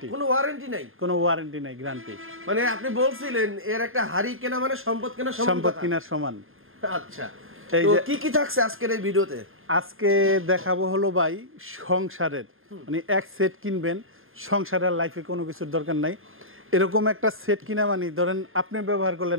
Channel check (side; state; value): left; late; 0.60 ms